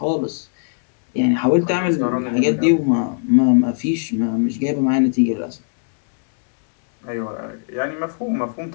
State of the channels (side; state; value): right; silent; digital silence